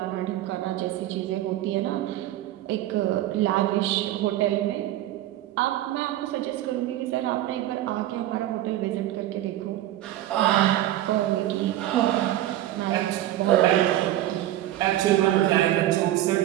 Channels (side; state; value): left; quieter; 14.0 dB